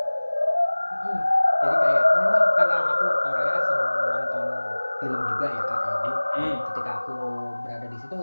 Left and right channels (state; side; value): inverted; both; correlation -1.00